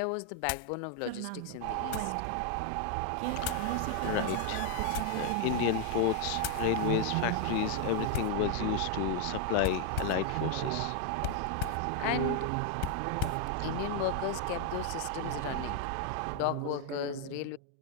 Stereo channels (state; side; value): different; both; correlation 0.00